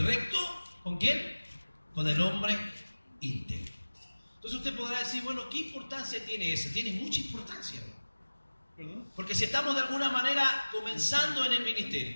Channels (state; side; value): inverted; both; correlation -1.00